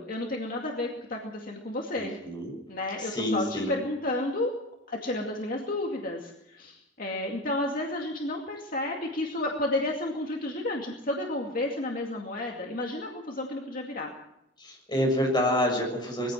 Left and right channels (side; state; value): both; normal; correlation 0.30